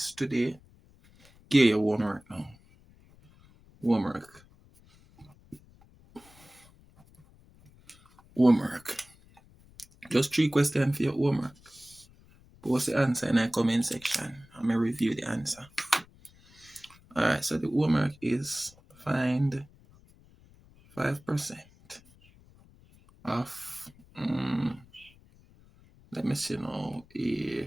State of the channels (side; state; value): left; noise; rumble, 27 dB below the sound